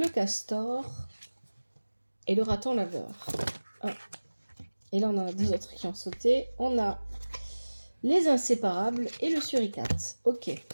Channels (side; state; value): both; inverted; correlation -1.00